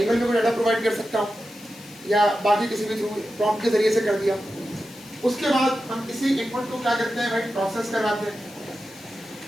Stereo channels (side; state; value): left; noise; hiss, 20 dB below the sound